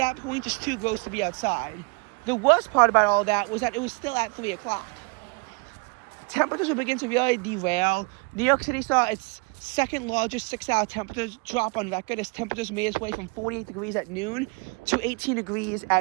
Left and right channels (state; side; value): quieter; left; 30.8 dB